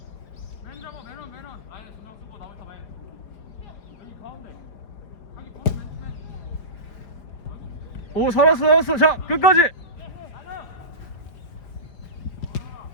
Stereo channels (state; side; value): late; right; 4.8 ms